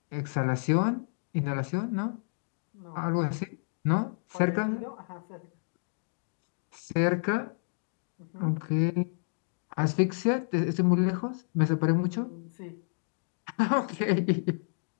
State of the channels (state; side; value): silent; right; digital silence